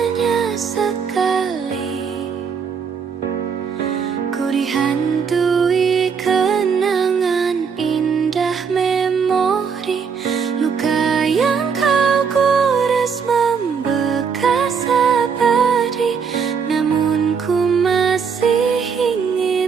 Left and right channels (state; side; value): quieter; left; 6.2 dB